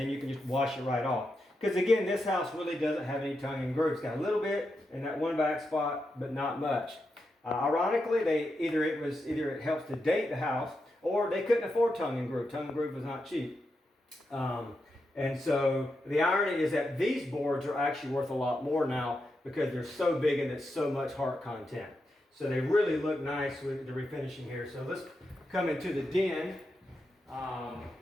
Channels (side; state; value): both; normal; correlation 0.86